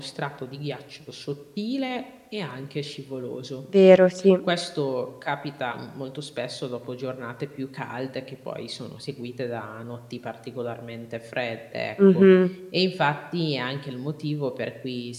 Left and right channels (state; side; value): identical; both; correlation 1.00